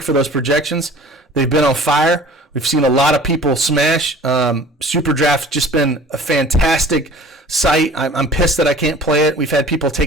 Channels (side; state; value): both; normal; correlation 0.46